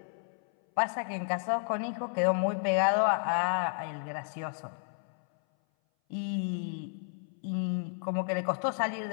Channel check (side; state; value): right; silent; 57 dB below the other